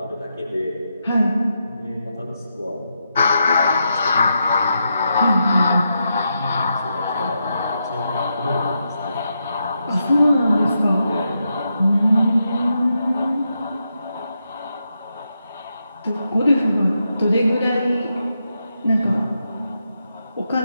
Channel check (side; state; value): both; inverted; correlation -0.84